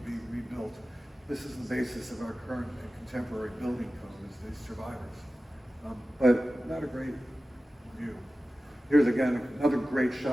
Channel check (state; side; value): normal; both; correlation 0.95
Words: be rebuilt. This is the basis of our current and contemporary building code, is these survivors. But not a great view. Here's again another great